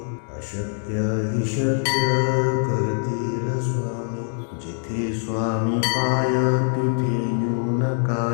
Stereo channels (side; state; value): right; silent; digital silence